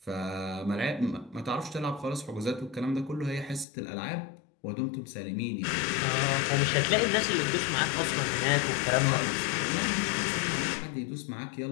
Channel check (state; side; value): drops out; right; at 3.7 s